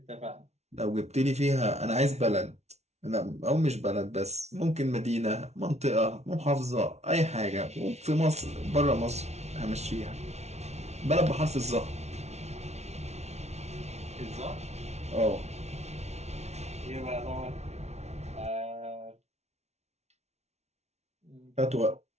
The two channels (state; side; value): late; left; 0.31 ms